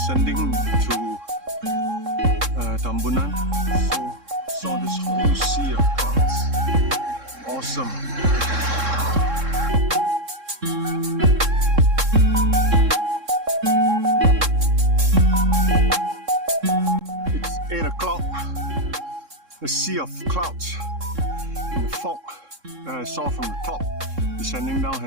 Descending through Tambunan, so saw this whole sea of clouds. Awesome. It's 8 o'clock. The sea of clouds and the fog that I saw from the top descending down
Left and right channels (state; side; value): late; left; 3.6 ms